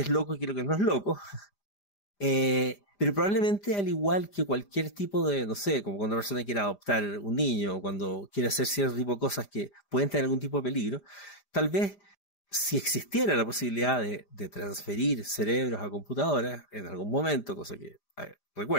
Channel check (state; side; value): late; right; 5.0 ms